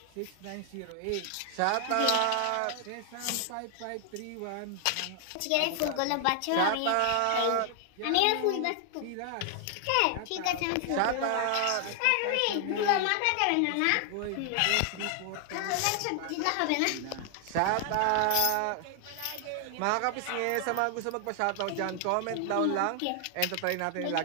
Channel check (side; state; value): both; different; correlation 0.00